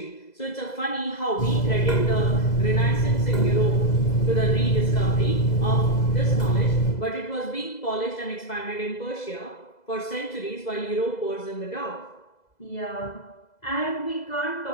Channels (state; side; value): late; right; 2.0 ms